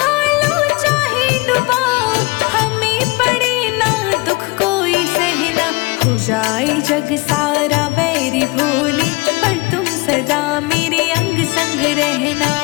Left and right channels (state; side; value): quieter; right; 25.3 dB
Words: चाहे डुबाओ, हमें पड़े ना दुख कोई सहना। हो जाए जग सारा बैरी भोली, पर तुम सदा मेरे अंग संग रहना,